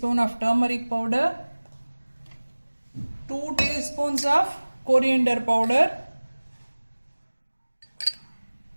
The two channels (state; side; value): inverted; both; correlation -1.00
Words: of turmeric powder, 2 teaspoons of coriander powder,